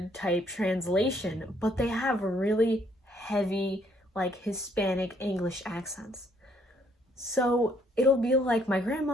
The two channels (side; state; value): both; normal; correlation 0.67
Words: type translation, but they have really heavy like Hispanic English accents. So it'll be like my